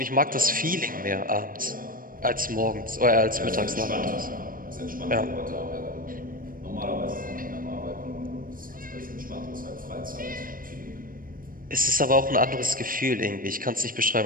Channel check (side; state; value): left; late; 0.41 ms